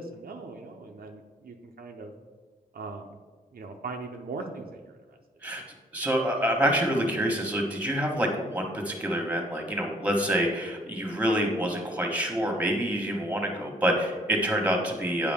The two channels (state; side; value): normal; both; correlation 0.59